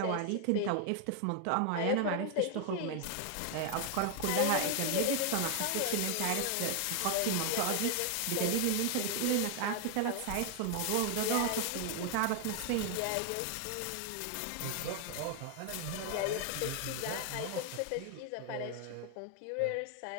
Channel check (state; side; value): different; both; correlation 0.00